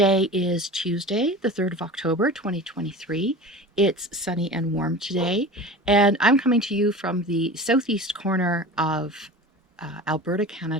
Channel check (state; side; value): normal; both; correlation 0.34